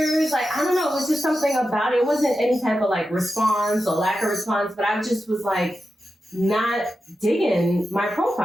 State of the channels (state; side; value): normal; both; correlation 0.90